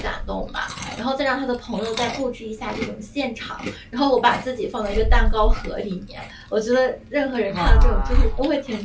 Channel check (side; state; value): both; identical; correlation 1.00